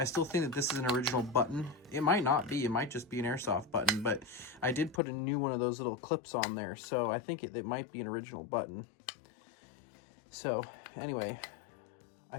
still think that this is an original button. It might not be, it might just be an airsoft button, but I did put a new one of those little clips on there, so I think it might be an original button. So anyway,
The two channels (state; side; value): drops out; right; at 5.0 s